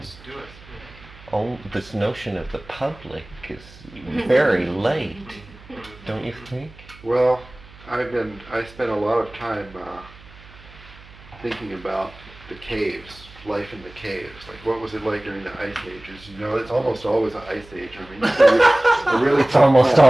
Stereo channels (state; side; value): noise; right; hum, 21 dB below the sound